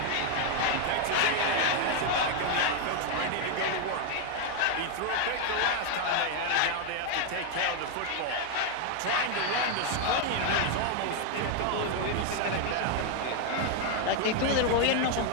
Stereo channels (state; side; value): different; both; correlation 0.01